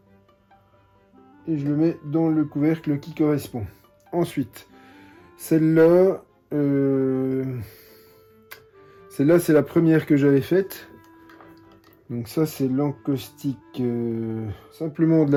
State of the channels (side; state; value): both; identical; correlation 1.00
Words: Et je le mets dans le couvercle qui correspond. Ensuite, celle-là, celle-là, c'est la première que j'avais faite. Donc ça, c'est l'encaustique, simplement de